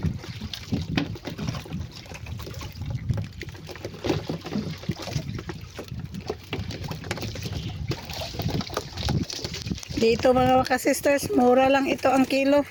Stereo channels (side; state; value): both; identical; correlation 1.00